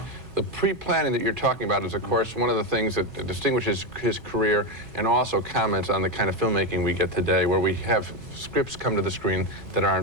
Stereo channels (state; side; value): late; left; 2.4 ms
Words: The pre-planning that you're talking about is, of course, one of the things that distinguishes his career, and also comments on the kind of filmmaking we get today, where we have scripts come to the screen that